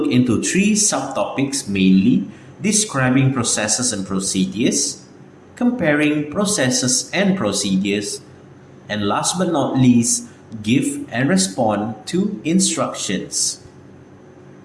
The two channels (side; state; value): both; identical; correlation 1.00